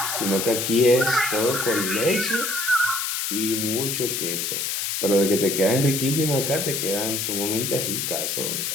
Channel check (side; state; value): left; noise; hiss, 1 dB below the sound